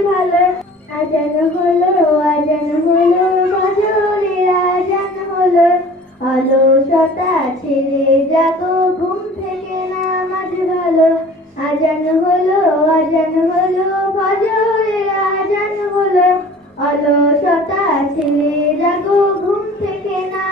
ভালো। আজান হলো, আজান হলো, ফজরের আজান হলো। অলসতা ছেড়ে জাগো, ঘুম থেকে নামাজ ভালো। আজান হলো, আজান হলো, ফজরের আজান হলো। অলসতা ছেড়ে জাগো, ঘুম থেকে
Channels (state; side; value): normal; both; correlation 0.46